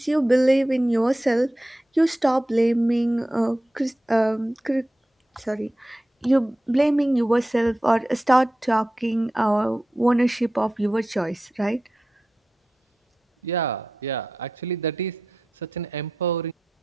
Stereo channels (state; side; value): normal; both; correlation 0.91